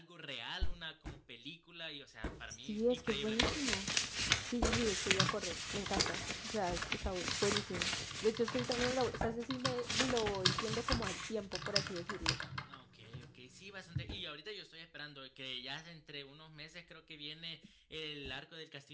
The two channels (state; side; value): identical; both; correlation 1.00